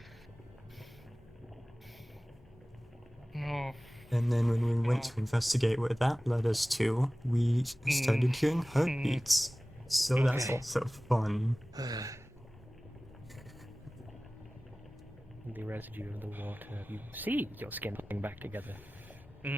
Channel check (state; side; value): normal; both; correlation 0.98